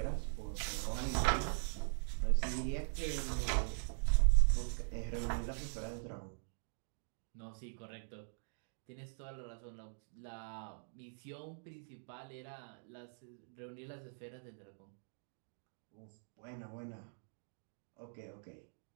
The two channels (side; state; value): left; silent; digital silence